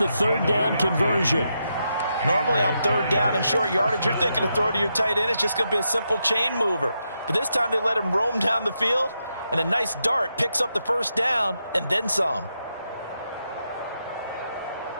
3rd down conversion. Normally on third down and short yardage, you're thinking to throw to your tight end. It's just going to be a simple chain mover. But this time they let him roam down the field, and a nice dart picks up the first down and then some.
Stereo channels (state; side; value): inverted; both; correlation -0.84